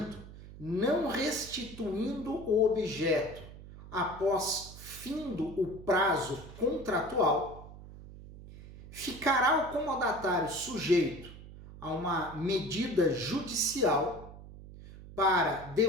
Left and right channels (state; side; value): noise; right; hum, 16 dB below the sound